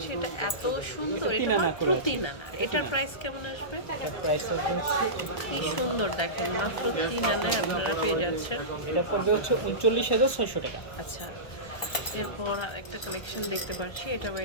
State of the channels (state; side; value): late; right; 1.3 ms